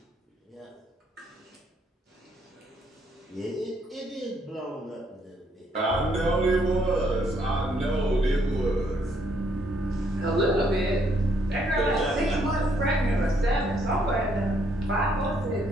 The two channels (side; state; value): both; normal; correlation 0.70